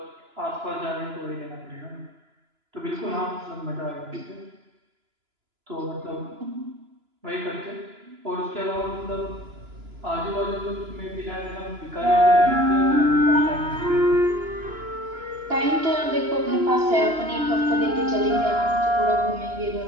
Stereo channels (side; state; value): left; late; 2.9 ms